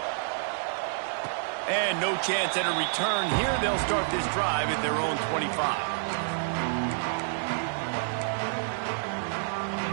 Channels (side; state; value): left; silent; digital silence